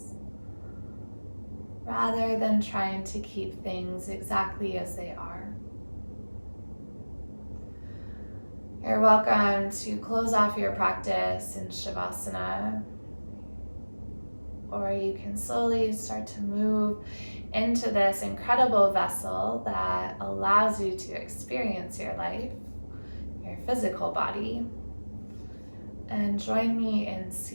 rather than trying to keep things exactly as they are. You're welcome to close off your practice in Shavasana, or you can slowly start to move into this incredible vessel that allows you to experience your life, your physical body, and join me in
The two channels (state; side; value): inverted; both; correlation -1.00